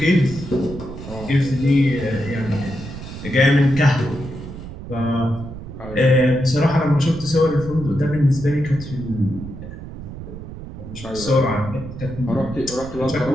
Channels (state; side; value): noise; right; rumble, 11 dB below the sound